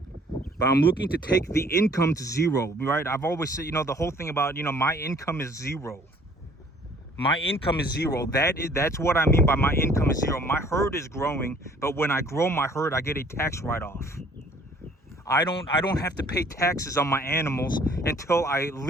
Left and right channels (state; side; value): normal; both; correlation 0.56